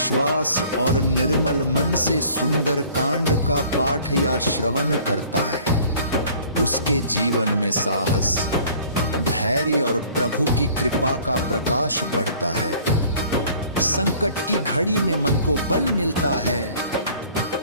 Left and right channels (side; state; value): both; inverted; correlation -0.52